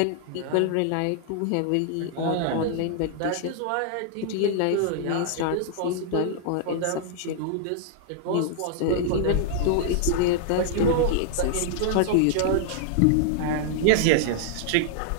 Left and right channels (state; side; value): different; both; correlation -0.01